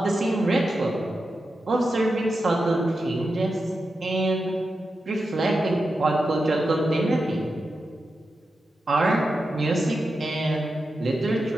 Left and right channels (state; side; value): normal; both; correlation 0.89